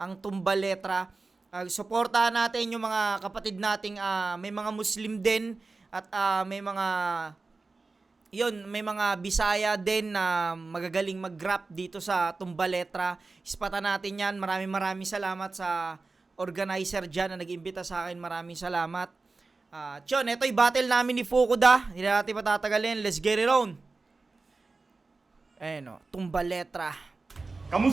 ang Tumbaletra. Suportahan natin yung mga kapatid nating may mga Muslim din at may mga Bisaya din na magagaling mag-rap dito sa Tumbaletra. Ispatan natin yan. Maraming salamat sa organizer dyan na nag-imbita sa akin. Maraming salamat. Ito yung battle namin ni Fukuda. Hindi natin patatagalin. Let's get it on. Ayan o, Tumbaletra.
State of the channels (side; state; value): left; quieter; 3.8 dB